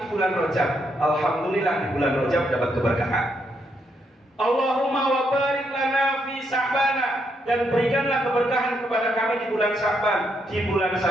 bulan Rajab. Alhamdulillah di bulan Rajab dapat keberkahan. Allahumma wa barik lana fi Sya'ban, dan berikanlah keberkahan kepada kami di bulan Sya'ban. Di bulan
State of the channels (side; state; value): both; normal; correlation 0.77